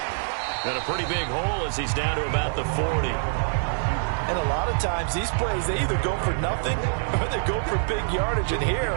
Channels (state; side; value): silent; left; digital silence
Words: And a pretty big hole as he's down to about the 40. And a lot of times these plays, they either go for nothing or they go for big yardage. And